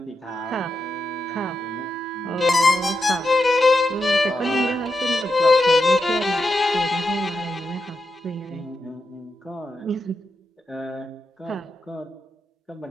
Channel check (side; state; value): both; normal; correlation 0.86